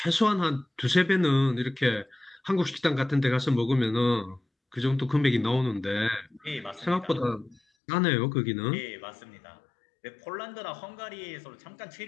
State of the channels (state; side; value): drops out; right; at 7.6 s